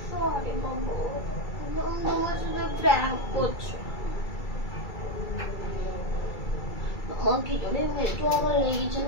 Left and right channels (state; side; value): late; right; 2.3 ms